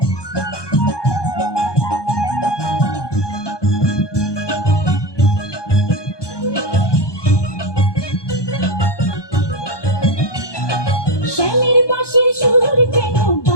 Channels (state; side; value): late; right; 1.2 ms